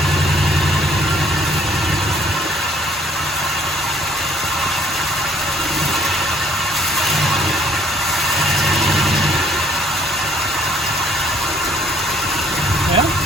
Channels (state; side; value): normal; both; correlation 0.61